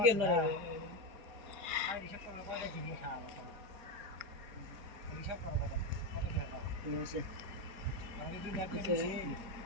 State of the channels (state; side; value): late; left; 4.6 ms